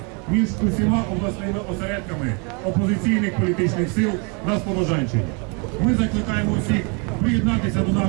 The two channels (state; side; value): quieter; left; 34.0 dB